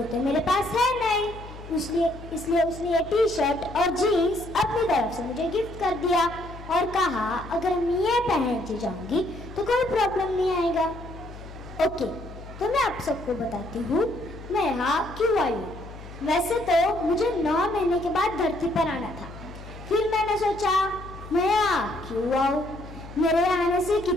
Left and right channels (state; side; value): noise; left; hum, 15 dB below the sound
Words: तो मेरे पास है नहीं. इसलिए उसने ये टी शर्ट और जीन्स अपनी तरफ से मुझे गिफ्ट कर दिया और कहा अगर मैं ये पहन के जाऊंगी तो कोई प्रॉब्लम नहीं आएगा. ओके, तो मैं आप सबको बताती हूँ मैं यहाँ क्यों आई हूँ. वैसे तो मुझे 9 महीने के बाद धरती पर आना था. फिर मैंने सोचा मैं यहाँ क्यों आऊँ, मेरे आने से